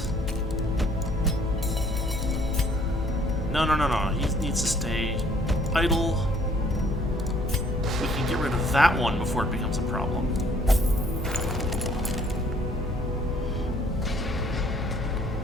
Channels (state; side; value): normal; both; correlation 0.60